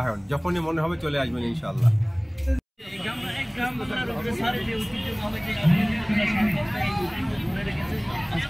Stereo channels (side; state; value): both; identical; correlation 1.00